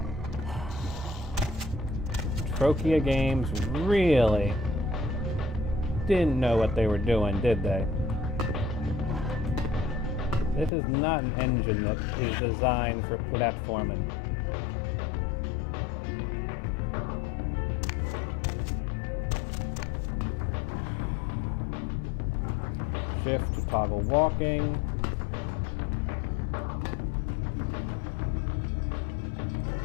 Trokia Games really didn't know what they were doing, did they? This is not an engine that is designed for platforming. Shift to toggle walking.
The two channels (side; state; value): right; drops out; at 10.7 s